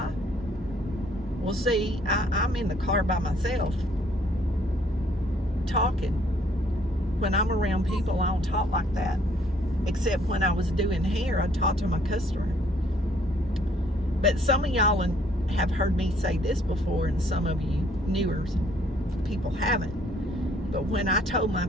Well, see, I'm in the car by myself talking. When I'm around people, I don't talk like that. Except when I was doing hair, I talked to my customer. But some of y'all have heard me say this before, and some of you newer people haven't. But when I told my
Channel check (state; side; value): normal; both; correlation 0.63